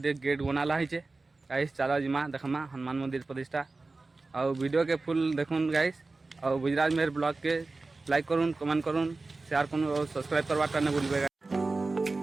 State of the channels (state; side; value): quieter; left; 3.5 dB